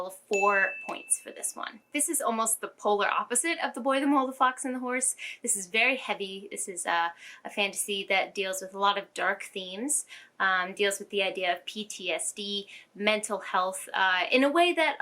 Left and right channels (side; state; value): both; identical; correlation 1.00